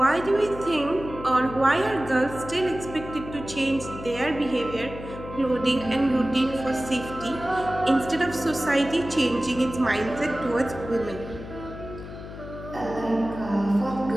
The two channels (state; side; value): noise; left; hum, 12 dB below the sound